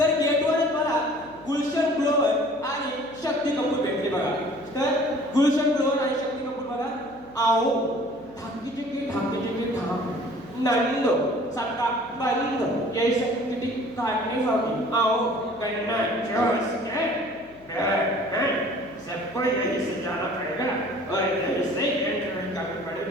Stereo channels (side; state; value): right; noise; hum, 26 dB below the sound